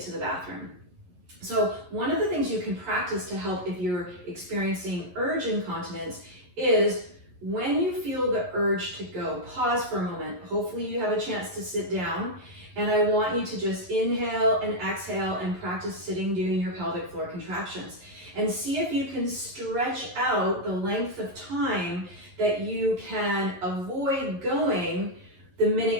to the bathroom. So one of the things you can practice to help if you're experiencing urge incontinence is when you feel the urge to go, pause for a moment. Hopefully you have a chance to sit down, and I want you to just inhale and exhale and practice sitting doing your pelvic floor contractions and see if you can stretch out the length of time that you can avoid going the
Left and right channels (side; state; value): left; late; 11 ms